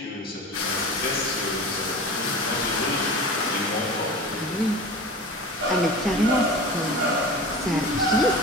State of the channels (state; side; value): normal; both; correlation 0.34